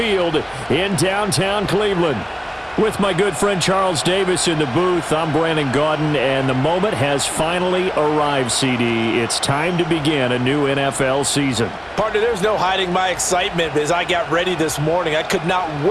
in downtown Cleveland. With my good friend Charles Davis in the booth, I'm Brandon Gaudin, and the moment has finally arrived, CD. It's time to begin a new NFL season. Partner, there's no hiding my excitement as I got ready this morning. I could not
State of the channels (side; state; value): both; identical; correlation 1.00